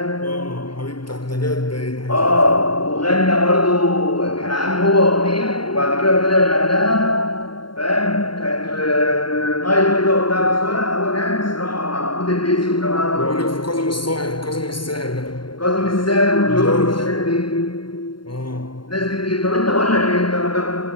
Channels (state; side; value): late; right; 0.72 ms